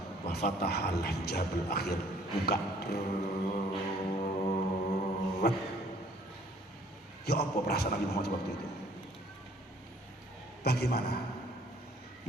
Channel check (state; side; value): normal; both; correlation 0.58